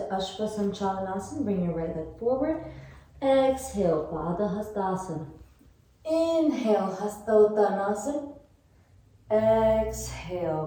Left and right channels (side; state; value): both; identical; correlation 1.00